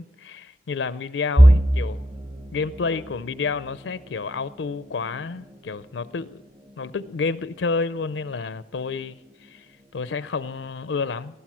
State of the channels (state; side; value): normal; both; correlation 0.67